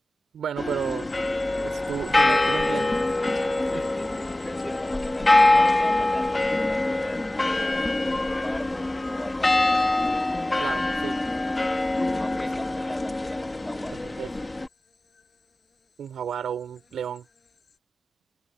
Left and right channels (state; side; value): normal; both; correlation 0.97